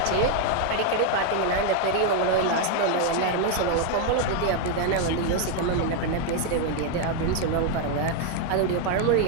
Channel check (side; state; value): both; different; correlation 0.01